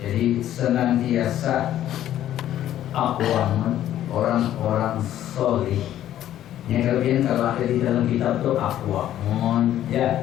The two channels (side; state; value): right; quieter; 12.1 dB